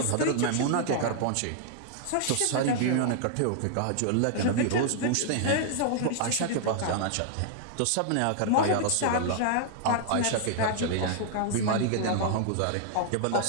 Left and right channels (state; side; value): different; both; correlation -0.01